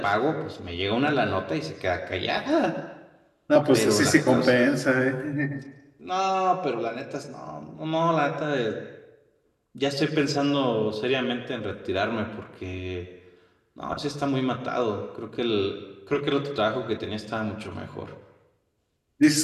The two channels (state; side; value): identical; both; correlation 1.00